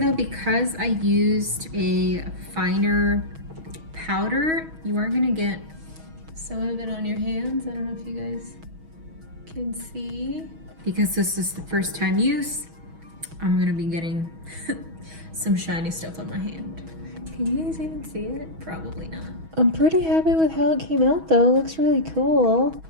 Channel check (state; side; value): late; left; 6.2 ms